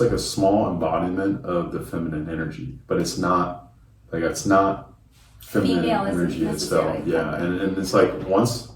like a small embodiment of the feminine energy, but it's not feminine energy itself. Yeah, and it's like once,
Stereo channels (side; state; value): both; identical; correlation 1.00